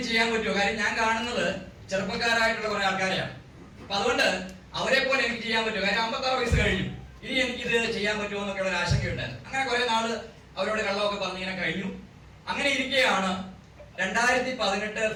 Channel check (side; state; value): both; identical; correlation 1.00